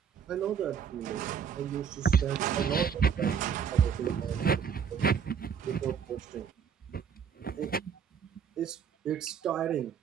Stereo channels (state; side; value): quieter; left; 7.4 dB